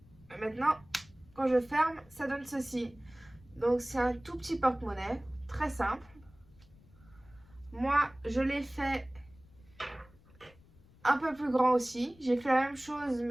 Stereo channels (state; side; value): noise; left; rumble, 26 dB below the sound